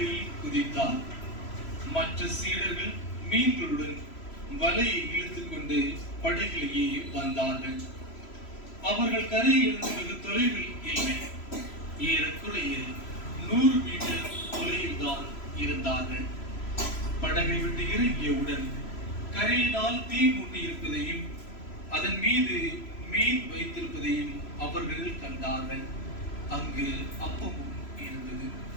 குதித்தார். மற்ற சீடர்கள் மீன்களுடன் வலையை இழுத்துக் கொண்டு படகிலேயே வந்தார்கள். அவர்கள் கரையிலிருந்து வெகு தொலைவில் இல்லை. ஏறக்குறைய 100 மீட்டர் தொலைவில் தான் இருந்தார்கள். படகை விட்டு இறங்கியவுடன் கரையினால் தீ மூட்டி இருப்பதையும் அதன் மீது மீன் வைத்திருப்பதையும் அவர்கள் கண்டார்கள். அங்கு அப்பமும் இருந்தது.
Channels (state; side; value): late; right; 3.0 ms